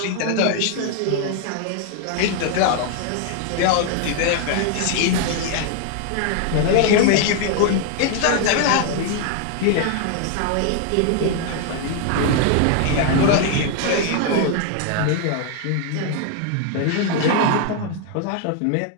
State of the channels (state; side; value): different; both; correlation 0.00